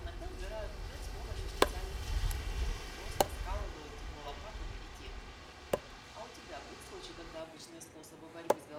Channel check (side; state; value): both; identical; correlation 1.00